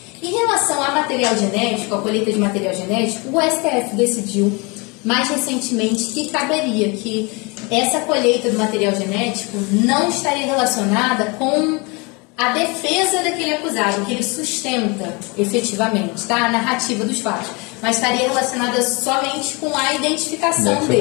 Em relação a material genético, a colheita de material genético, o STF decidiu mais recentemente que caberia, que essa colheita do material genético não estaria relacionada com a defesa daquele acusado, que ele sustenta efetivamente, tá? A narrativa dos fatos, mas estaria relacionada somente com a identificação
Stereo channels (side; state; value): right; quieter; 28.6 dB